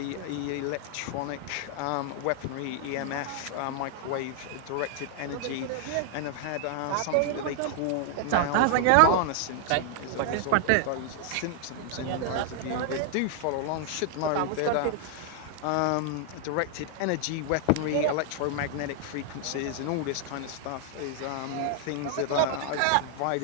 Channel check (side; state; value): both; different; correlation 0.00